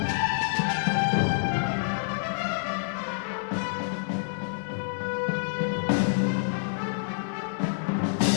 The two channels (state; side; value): silent; right; 60 dB below the other